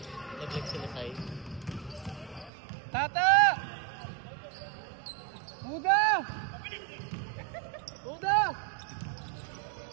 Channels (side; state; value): left; drops out; at 2.5 s